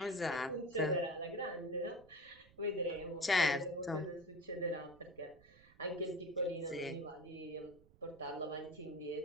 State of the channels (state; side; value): noise; right; rumble, 25 dB below the sound